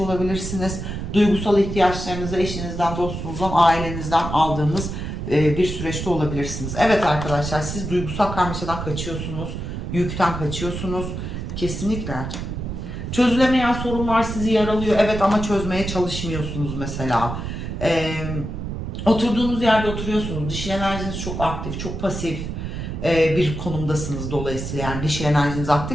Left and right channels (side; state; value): right; noise; rumble, 6 dB below the sound